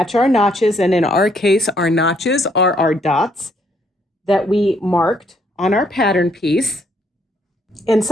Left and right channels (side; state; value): both; normal; correlation 0.69